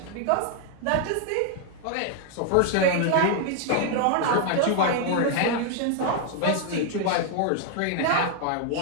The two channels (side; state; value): both; different; correlation 0.00